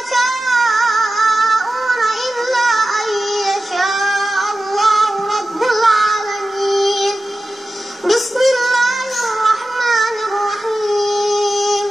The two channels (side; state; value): both; normal; correlation 0.94